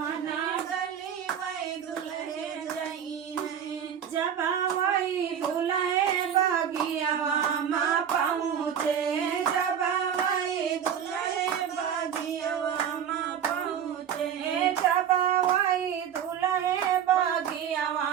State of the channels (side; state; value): left; quieter; 8.7 dB